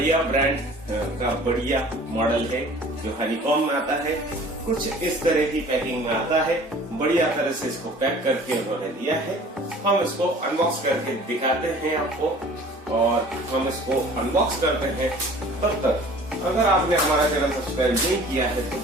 ब्रांड का बढ़िया मॉडल है जो हनीकॉम में आता है। कुछ इस तरह की पैकिंग में आता है। बढ़िया तरह से इसको पैक करके उन्होंने दिया है। हम इसको अनबॉक्स करके दिखाते हैं आपको और हम इसको अनबॉक्स करते हैं। तब तक अगर आपने हमारा चैनल सब्सक्राइब नहीं किया है तो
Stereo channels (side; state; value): both; normal; correlation 0.47